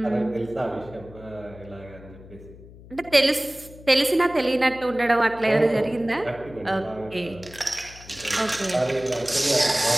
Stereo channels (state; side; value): noise; left; hum, 19 dB below the sound